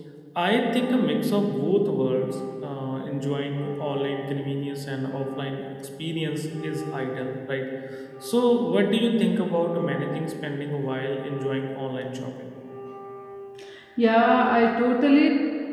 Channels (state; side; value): identical; both; correlation 1.00